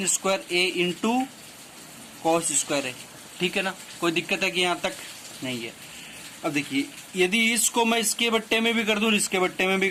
square A into cos square A, ठीक है ना। कोई दिक्कत है कि यहाँ तक नहीं है। अब देखिए यदि इसको मैं इसके बट्टे में भी कर दूं, इसके बट्टे में भी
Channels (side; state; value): both; identical; correlation 1.00